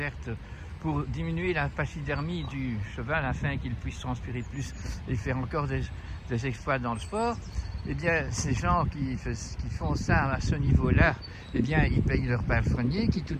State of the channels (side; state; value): both; identical; correlation 1.00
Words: pour diminuer la pachydermie du cheval afin qu'il puisse transpirer plus et faire encore des exploits dans le sport. Eh bien, ces gens qui font ça à ce niveau-là, eh bien, ils payent leur palefrenier qui,